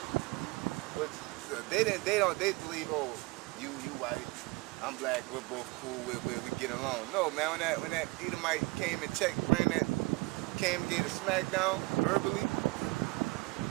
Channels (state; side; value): quieter; left; 24.8 dB